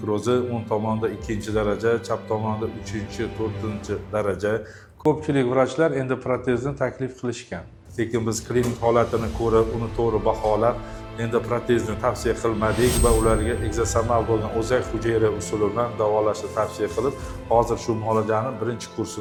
o'ng tomonda 2-daraja, chap tomonda 3-4 daraja. Ko'pchilik vrachlar endi protezni taklif qilishgan. Lekin biz klinik holatini ko'rib, uni to'g'ri baholab, endi protezni tavsiya qilmadik va ularga ekzosomal bo'lgan o'zak hujayra usuli bilan davolashni tavsiya qilib, hozir shu muolajaning birinchi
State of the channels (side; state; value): both; identical; correlation 1.00